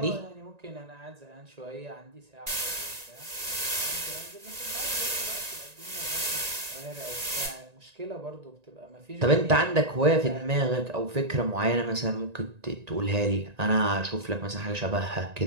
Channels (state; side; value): late; left; 1.9 ms